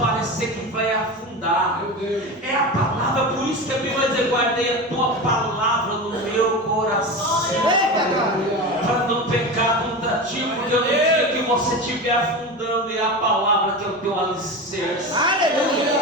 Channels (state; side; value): normal; both; correlation 0.25